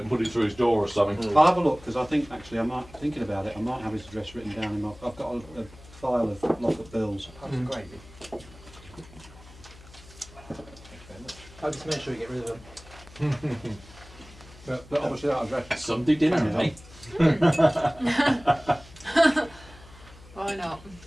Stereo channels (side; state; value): left; noise; hum, 21 dB below the sound